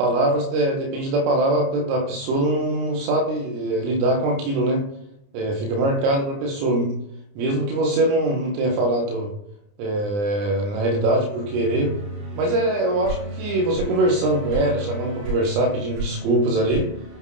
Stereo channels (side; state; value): left; late; 29 ms